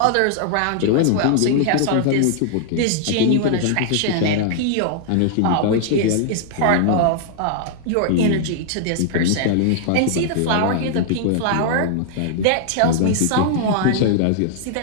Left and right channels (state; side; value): different; both; correlation 0.00